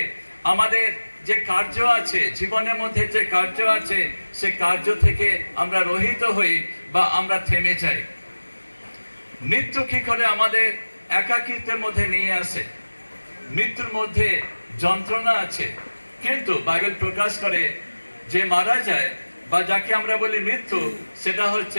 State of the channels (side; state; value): both; inverted; correlation -1.00